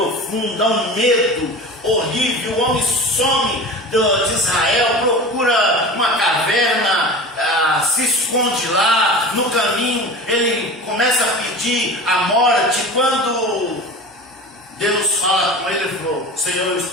um medo horrível. O homem some de Israel, procura uma caverna, se esconde lá. No caminho ele começa a pedir a morte. Quando Deus fala com ele, ele falou: Senhor, eu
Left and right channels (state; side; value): normal; both; correlation 0.34